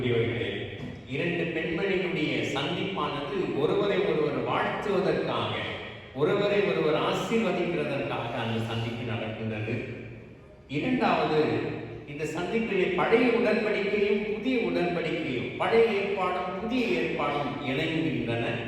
இரண்டு பெண்மணிகளுடைய சந்திப்பானது ஒருவரை ஒருவர் வாழ்த்துவதற்காக, ஒருவரை ஒருவர் ஆசீர்வதிக்கிறதற்காக அந்த சந்திப்பு நடக்கின்றது. இரண்டாவது, இந்த சந்திப்பிலே பழைய உடன்படிக்கையும் புதிய உடன்படிக்கையும், பழைய ஏற்பாடும் புதிய ஏற்பாடும் இணைகின்றன.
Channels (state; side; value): identical; both; correlation 1.00